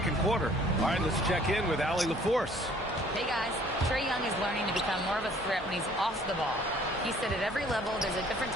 quarter. All right, let's check in with Allie LaForce. Hey, guys. Trae Young is learning to become more of a threat when he's off the ball. He said at every level there's a different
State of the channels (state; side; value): normal; both; correlation 0.57